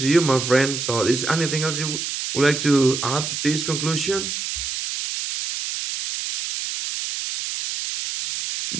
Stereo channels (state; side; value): noise; right; hiss, 4 dB below the sound